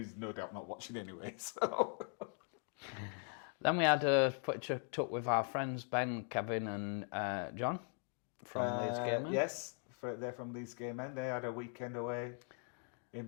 no doubt not watching anyway, so... Then we had a picture took with our friends Ben, Kevin and John from Leeds Game Men. Yes, they're from Leeds Game Men. They had a weekend away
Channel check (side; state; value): right; quieter; 39.8 dB